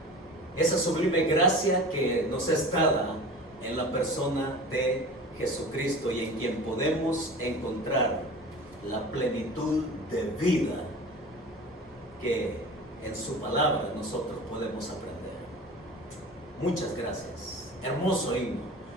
Esa sublime gracia que nos es dada en la persona de Jesucristo y en quien podemos encontrar la plenitud de vida que en su palabra nosotros podemos aprender. Muchas gracias. Hermoso himno,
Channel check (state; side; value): normal; both; correlation 0.37